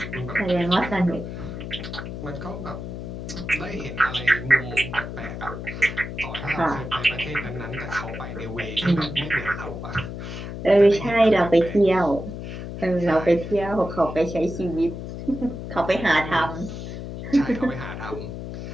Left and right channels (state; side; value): noise; left; hum, 8 dB below the sound